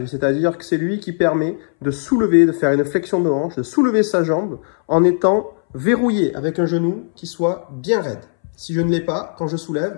c'est-à-dire que c'est lui qui permet de soulever, de faire une flexion de hanche, de soulever sa jambe en étant verrouillé avec un genou qui soit bien raide. Si je ne l'ai pas, quand je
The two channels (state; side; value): silent; right; 67 dB below the other